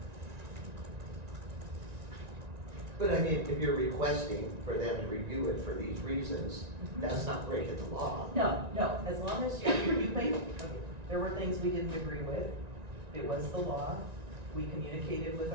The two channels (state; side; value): late; left; 1.9 ms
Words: But I mean, if you're requesting for them to review it for these reasons, that's not breaking the law. No, as long as you make, okay, there were things we didn't agree with, it was the law. We communicated with